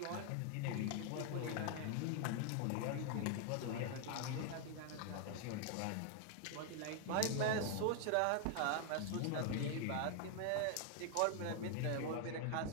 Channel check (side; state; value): both; different; correlation 0.00